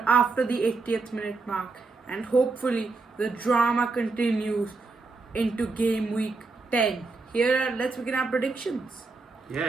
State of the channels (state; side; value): quieter; left; 3.9 dB